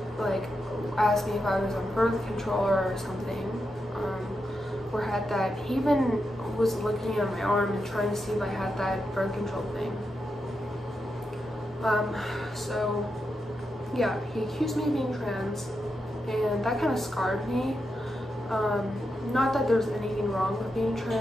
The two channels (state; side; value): normal; both; correlation 0.86